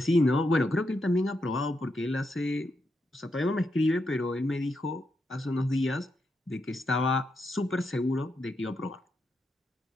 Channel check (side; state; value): both; normal; correlation 0.83